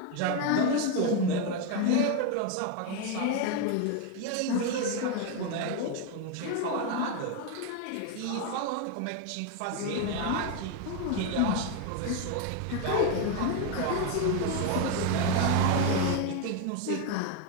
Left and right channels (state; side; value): different; both; correlation 0.02